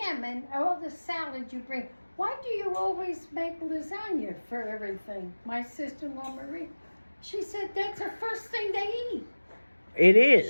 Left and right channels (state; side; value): inverted; both; correlation -1.00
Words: and all the salad you bring, why do you always make lasagna for everything? My sister-in-law Marie, she said that's the first thing they eat. It